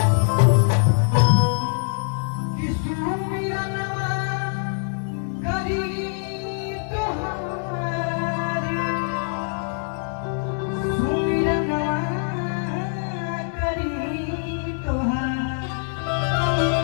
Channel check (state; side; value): silent; right; digital silence